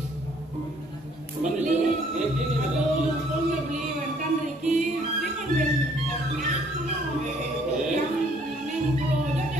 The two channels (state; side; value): normal; both; correlation 0.62